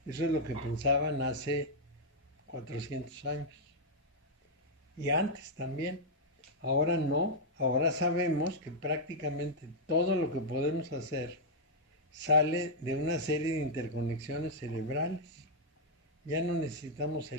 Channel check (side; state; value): both; normal; correlation -0.05